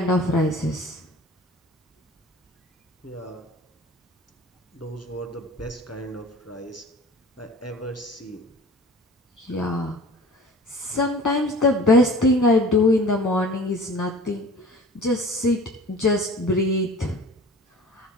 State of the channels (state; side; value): normal; both; correlation 0.43